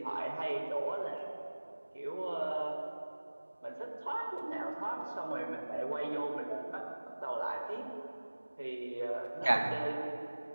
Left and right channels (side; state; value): both; inverted; correlation -1.00